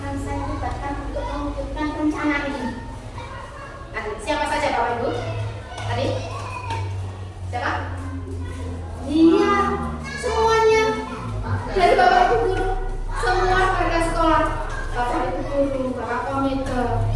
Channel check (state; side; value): identical; both; correlation 1.00